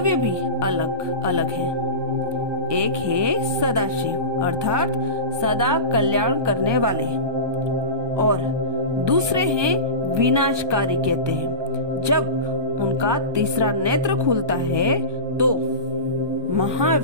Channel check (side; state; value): left; late; 1.2 ms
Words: भी अलग अलग हैं। एक है सदाशिव अर्थात सदा कल्याण करने वाले और दूसरे हैं विनाशकारी कहते हैं। जब उनका तीसरा नेत्र खुलता है तो